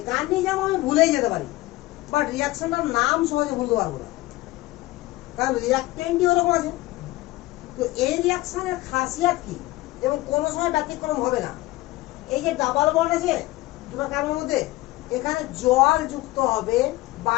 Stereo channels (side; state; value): right; quieter; 18.9 dB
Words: আমি ভুলেই যেতে পারি, বাট রিঅ্যাকশনটার নাম সহজে ভুলতে পারবো না, কারণ রিঅ্যাকটেন্টই ওরকম আছে। তো এই রিঅ্যাকশনের খাসিয়াত কি এবং কোনো সময় ব্যতিক্রম হবে না। এই যে ডাবল বন্ড আছে দুটো কার্বনের মধ্যে, এখানে জল যুক্ত হবে